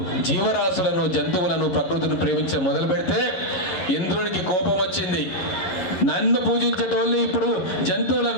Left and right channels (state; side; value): late; right; 11 ms